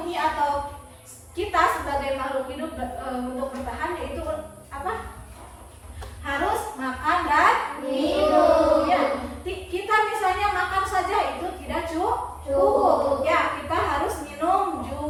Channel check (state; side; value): identical; both; correlation 1.00